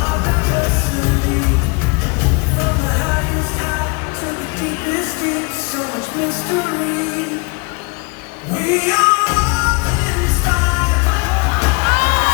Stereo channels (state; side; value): quieter; right; 29.0 dB